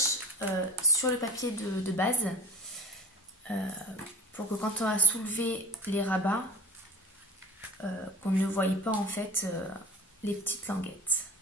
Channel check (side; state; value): both; normal; correlation 0.41